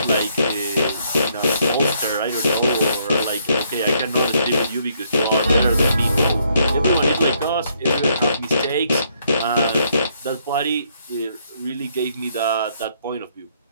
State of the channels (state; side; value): inverted; both; correlation -0.71